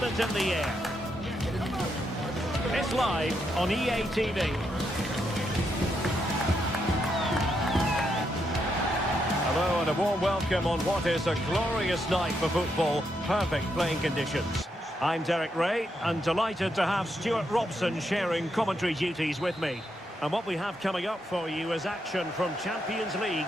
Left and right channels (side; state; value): both; normal; correlation 0.80